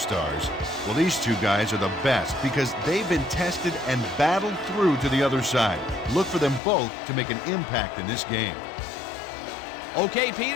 Well, these two guys are the best because they've been tested and battled through to the other side. Look for them both to make an impact in this game. Okay,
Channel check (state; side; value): drops out; right; at 6.6 s